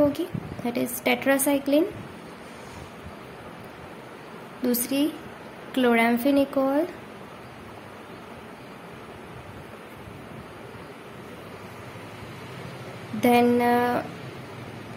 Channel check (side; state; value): both; identical; correlation 1.00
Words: दैट इज टेट्रासाइक्लिन, दूसरी chloramphenicol, then